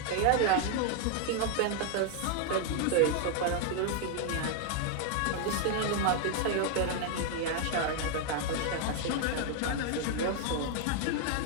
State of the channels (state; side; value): different; both; correlation 0.00